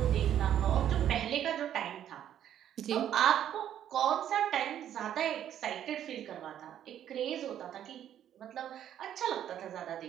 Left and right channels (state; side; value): quieter; left; 10.6 dB